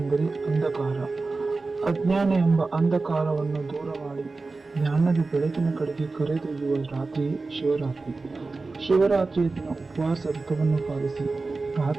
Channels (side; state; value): left; quieter; 3.7 dB